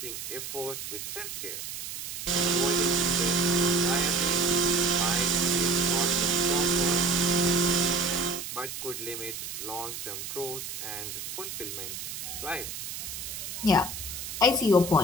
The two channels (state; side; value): noise; right; hiss, 7 dB below the sound